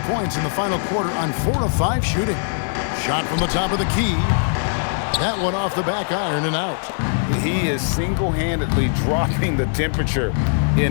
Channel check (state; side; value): silent; right; 65 dB below the other